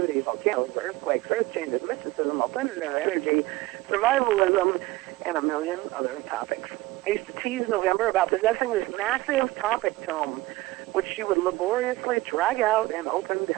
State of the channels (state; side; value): quieter; left; 19.2 dB